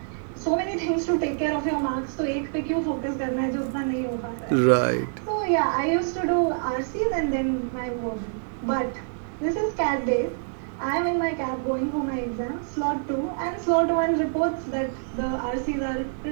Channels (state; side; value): silent; left; digital silence